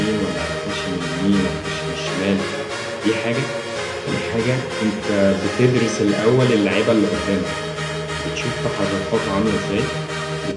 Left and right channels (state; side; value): identical; both; correlation 1.00